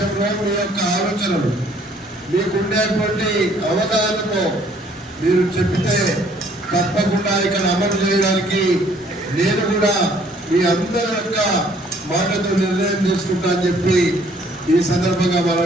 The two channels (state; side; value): normal; both; correlation 0.61